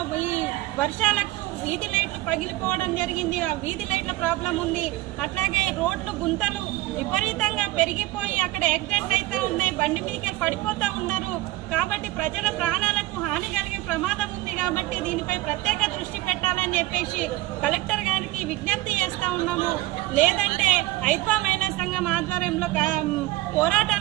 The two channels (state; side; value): quieter; left; 18.0 dB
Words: ఈ వర్షాలకు వీధి లైట్లు పగిలిపోవడం జరిగింది. ఆ వీధి లైట్ల ప్రాబ్లం ఉంది. అట్లాగే రోడ్లు గుంతలు విపరీతంగా పెరిగిపోయి అక్కడ యాక్సిడెంట్లు అయితే ఉన్నాయి, బండి మీదకి పడిపోతూ ఉన్నారు. కాబట్టి ప్రజల ప్రాణాలకు హాని కలిగే ప్రమాదం ఉంది. కాబట్టి దీనిపై ప్రత్యేక దృష్టి పెట్టాలని చెప్పేసి కలెక్టర్ గారికి విజ్ఞప్తి చేస్తా ఉన్నాము. లేదంటే 5వ మహిళా సంఘం ఆధ్వర్యంలో